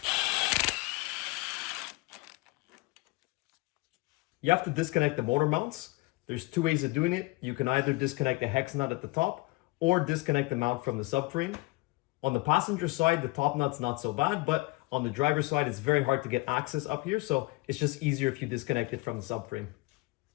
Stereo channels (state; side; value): quieter; right; 22.8 dB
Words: You have to disconnect the motor mounts. There's two ways of doing it. You can either disconnect the hex nut at the top or disconnect the mount from the subframe. On the passenger side, the top nut's not so bad, but on the driver's side, it's very hard to get access up here, so it's just easier if you disconnect it from the subframe.